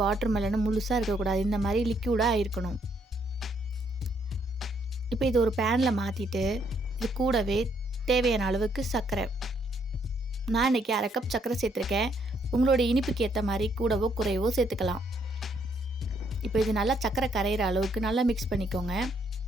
வாட்டர் மெலனும் முழுசாக இருக்கக்கூடாது, இந்த மாதிரி லிக்யூடாக இருக்கணும். இப்போ இது ஒரு பேனில் மாற்றிட்டு இது கூடவே தேவையான அளவுக்கு சர்க்கரை, நான் இன்றைக்கி 1/2 கப் சர்க்கரை சேர்த்துருக்கேன். உங்களோட இனிப்புக்கு ஏற்ற மாதிரி கூடவோ குறைவோ சேர்த்துக்கலாம். இப்போ இது நல்லா சர்க்கரை கரையிற அளவுக்கு நல்லா மிக்ஸ் பண்ணிக்கோங்க.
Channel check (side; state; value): both; normal; correlation 0.71